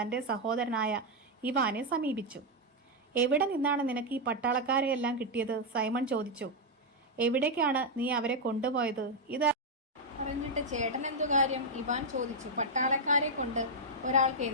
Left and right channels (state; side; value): normal; both; correlation -0.01